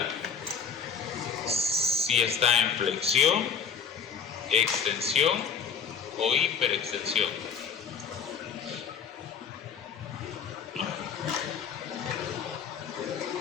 Si está en flexión, extensión o hiperextensión.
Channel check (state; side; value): quieter; right; 6.4 dB